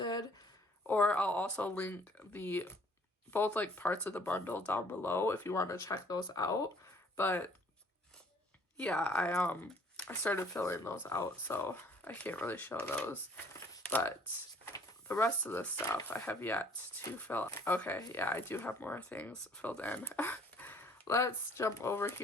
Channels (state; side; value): normal; both; correlation 0.57